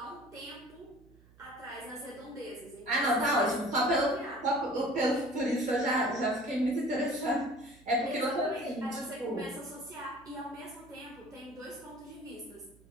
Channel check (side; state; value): right; noise; hum, 26 dB below the sound